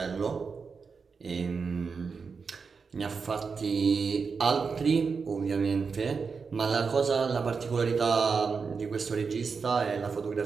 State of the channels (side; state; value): left; quieter; 5.2 dB